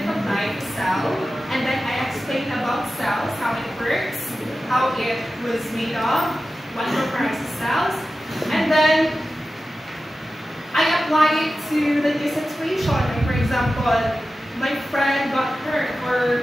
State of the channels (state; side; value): normal; both; correlation 0.94